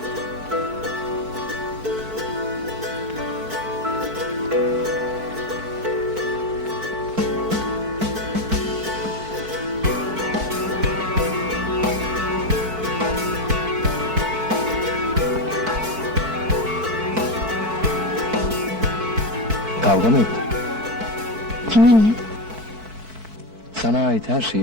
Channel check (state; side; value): late; left; 4.5 ms